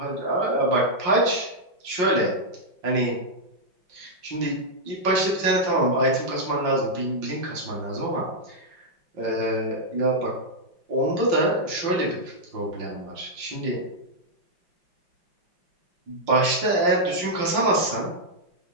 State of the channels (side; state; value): left; late; 5.6 ms